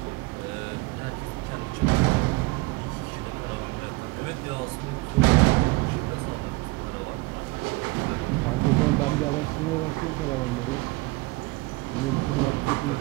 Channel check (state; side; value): quieter; left; 22.9 dB